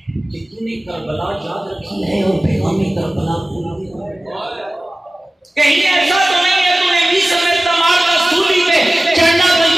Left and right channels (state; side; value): normal; both; correlation 0.97